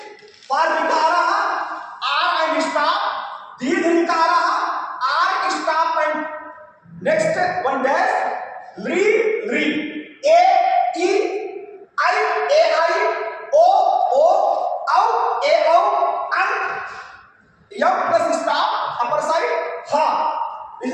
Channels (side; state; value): both; identical; correlation 1.00